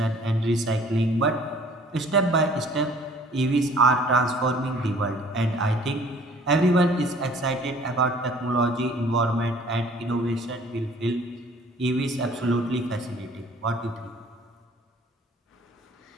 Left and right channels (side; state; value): both; normal; correlation 0.53